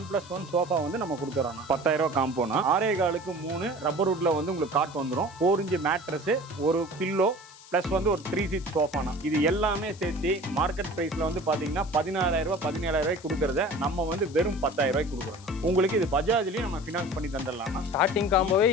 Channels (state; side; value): noise; left; hiss, 21 dB below the sound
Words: சோஃபா வந்து நம்ம கொடுத்துறோம். 10000 ரூபாய் காம்போனா 6.25க்கு 3 ரப்பர் வுட்ல வந்து உங்களுக்கு காட் வந்துடும். 4 இன்ச் மேட்ரஸ், ஒரு பில்லோ ப்ளஸ் வந்து ஒரு 3 சீட் சோஃபானா இது எல்லாமே சேர்த்து மார்க்கெட் பிரைஸ்ல வந்து பாத்தீங்கன்னா 16000 ரூபாய் 17000 ரூபாய் கொடுக்கறத நம்ம வந்து வெறும் 10000 ரூபாய்க்கு கொடுக்குறோம். உங்களுக்கு இது பஜாஜ்லயும் நம்ம ஃபினான்ஸ் பண்ணி தந்துடலாம். ஸ்டார்டிங் காம்போவே